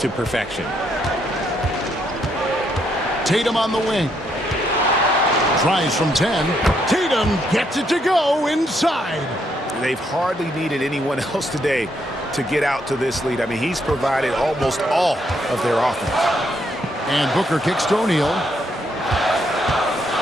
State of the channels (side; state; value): both; normal; correlation 0.74